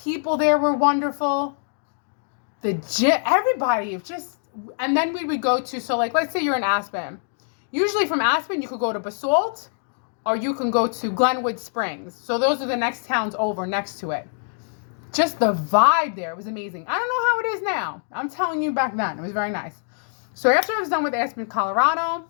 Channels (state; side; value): silent; right; digital silence